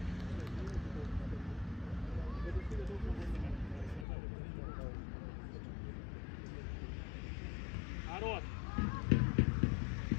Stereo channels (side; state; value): right; drops out; at 4.0 s